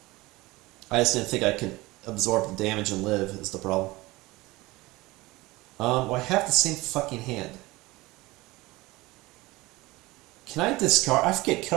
I just didn't think I could absorb the damage and live, is the problem. Well, I have the same fucking hand. Can I discard? I forget,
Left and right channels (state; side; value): quieter; left; 20.8 dB